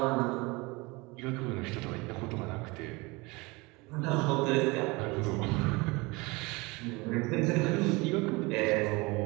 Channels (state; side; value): quieter; left; 24.8 dB